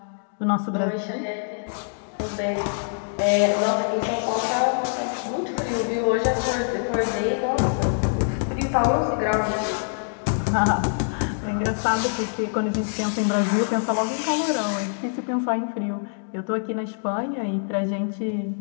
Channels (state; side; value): silent; right; digital silence